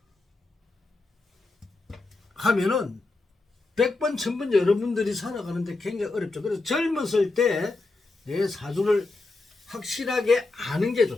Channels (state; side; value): quieter; right; 3.3 dB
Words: 하면은 100번 1000번 여러분들이 살아가는데 굉장히 어렵죠. 그래서 젊었을 때 내 사주를 확실하게 아는 게